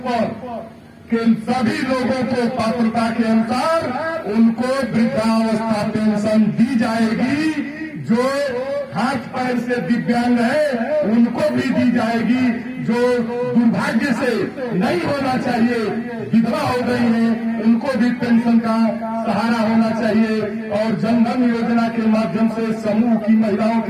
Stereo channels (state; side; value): identical; both; correlation 1.00